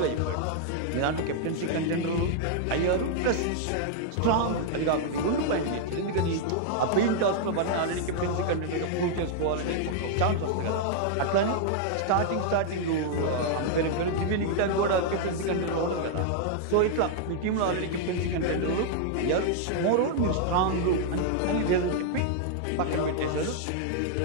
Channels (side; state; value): both; different; correlation -0.01